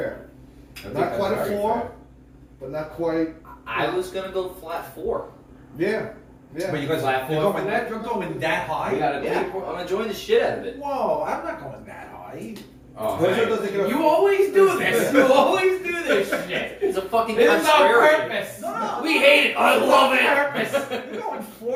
I think Not that's quite a very 4, fair. but not quite. I was gonna go flat 4. Yeah. Yeah. But you guys Flat you're four going for that? You're going that We high? got a Yeah, 3.0. I'm enjoying the shit out of it. Whoa, I'm not going that high. Oh, Those man. doesn't get a- You always do this. You always do this shit. It's a fucking This is on contrarian. purpose. No. We hate it. I love it. You're going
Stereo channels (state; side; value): identical; both; correlation 1.00